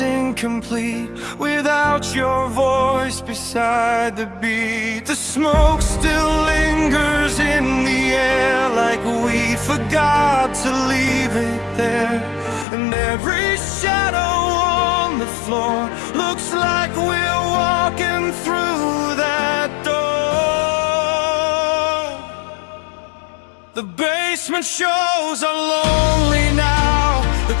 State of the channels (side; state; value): right; drops out; at 12.7 s